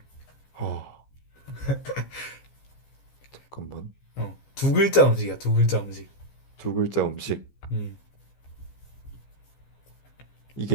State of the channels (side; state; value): right; late; 15 ms